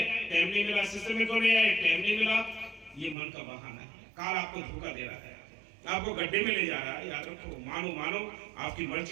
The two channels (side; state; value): left; drops out; at 3.2 s